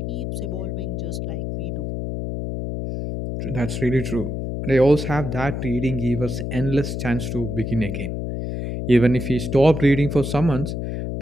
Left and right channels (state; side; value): noise; left; hum, 4 dB below the sound